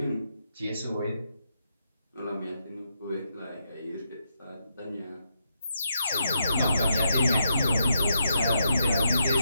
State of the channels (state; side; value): inverted; both; correlation -0.81